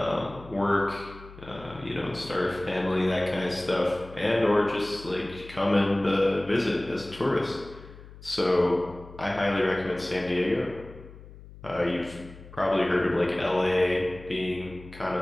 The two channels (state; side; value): noise; left; hum, 18 dB below the sound